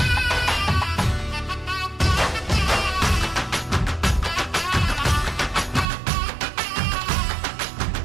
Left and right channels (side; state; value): left; drops out; at 5.9 s